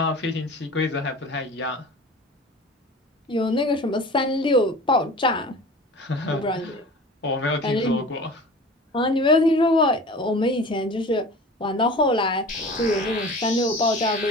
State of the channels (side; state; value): both; normal; correlation 0.39